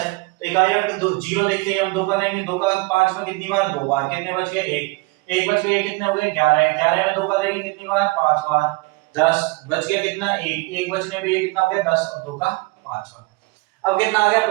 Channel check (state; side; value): quieter; left; 25.7 dB